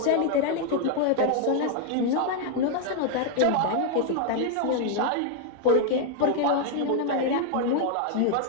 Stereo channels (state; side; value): different; both; correlation 0.00